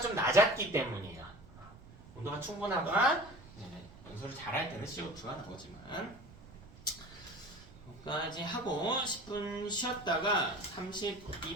좀 낮았기 때문이에요. 온도가 충분하거나 연소를 잘할 때는 CO2가 나오지만 여기까지 하고 10분 쉬었다가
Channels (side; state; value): right; noise; rumble, 20 dB below the sound